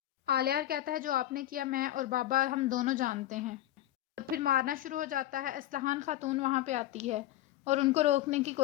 آلیار کہتا ہے جو آپ نے کیا میں اور بابا ہم دونوں جانتے ہیں، اور پھر مارنا شروع ہو جاتا ہے۔ اسلحان خاتون وہاں پہ آتی ہے اور ان کو روکنے کی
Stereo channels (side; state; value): right; quieter; 13.7 dB